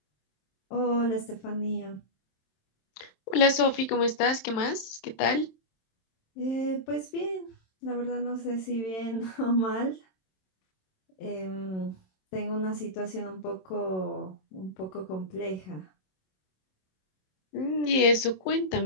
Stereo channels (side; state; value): right; late; 27 ms